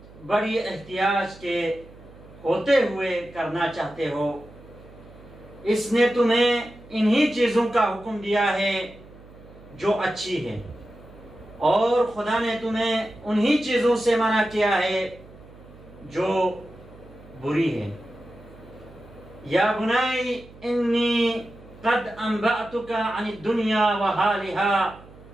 بڑی احتیاج کے ہوتے ہوئے کرنا چاہتے ہو، اس نے تمہیں انہی چیزوں کا حکم دیا ہے جو اچھی ہے، اور خدا نے تمہیں انہی چیزوں سے منع کیا ہے جو بری ہے. یا بنی انی قد انبأتک عن الدنیا وحالها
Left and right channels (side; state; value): right; noise; hum, 21 dB below the sound